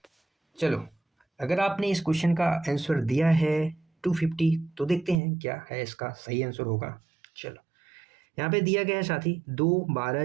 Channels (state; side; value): drops out; left; at 5.2 s